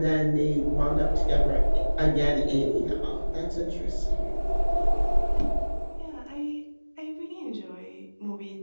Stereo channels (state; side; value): inverted; both; correlation -1.00